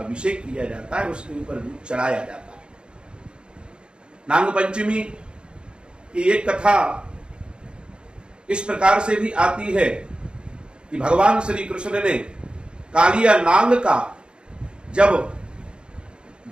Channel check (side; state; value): left; late; 0.053 ms